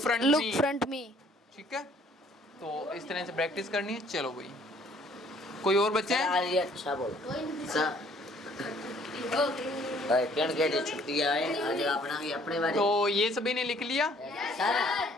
front look me. front me. ठीक है तो इस तरह से प्रैक्टिस करनी है चलो भाई कोई और बच्चे हैं आज ये अच्छा बोल सर कण के लिए छुट्टी आए आज अपना भी अपने बारे तो ये सभी ने लिख लिया सर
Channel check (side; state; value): both; normal; correlation 0.60